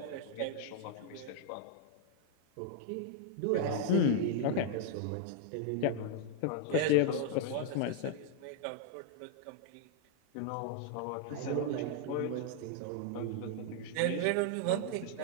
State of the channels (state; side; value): different; both; correlation -0.01